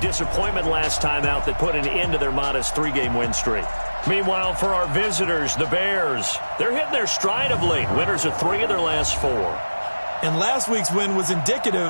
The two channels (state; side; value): inverted; both; correlation -1.00